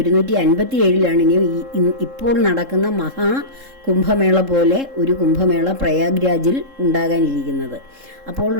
ഇനി ഇപ്പോൾ നടക്കുന്ന മഹാകുംഭമേള പോലെ ഒരു കുംഭമേള പ്രയാഗ്രാജിൽ ഉണ്ടാകാനിരിക്കുന്നത്.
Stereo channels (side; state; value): left; late; 3.7 ms